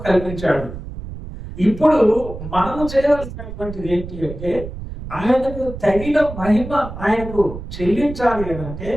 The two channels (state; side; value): noise; right; rumble, 10 dB below the sound